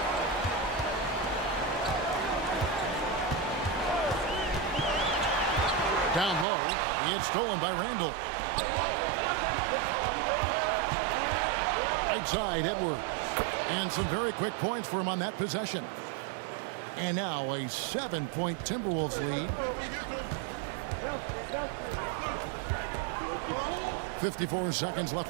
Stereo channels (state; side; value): drops out; left; at 6.5 s